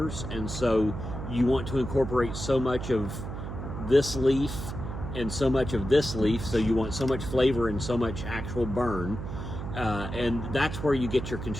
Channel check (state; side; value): noise; right; hum, 7 dB below the sound